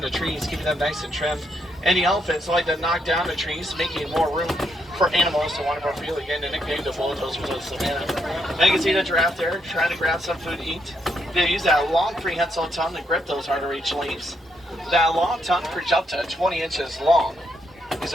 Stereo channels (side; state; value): both; normal; correlation 0.77